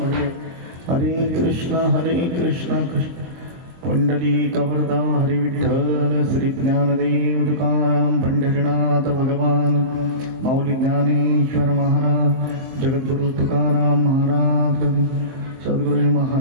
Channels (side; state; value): left; late; 23 ms